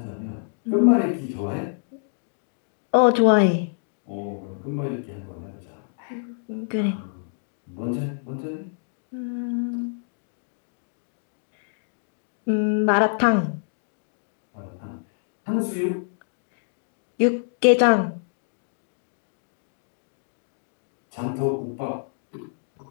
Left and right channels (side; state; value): right; silent; digital silence